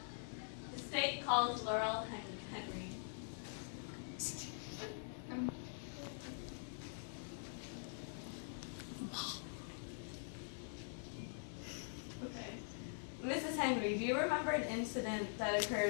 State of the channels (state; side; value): silent; right; digital silence